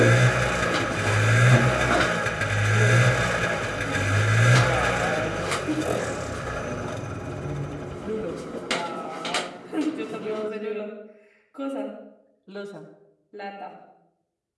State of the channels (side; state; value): both; identical; correlation 1.00